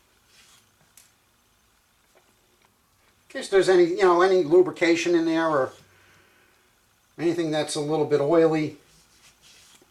In case there's any lubrication in there or anything that's a little bit oily.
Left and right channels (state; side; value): identical; both; correlation 1.00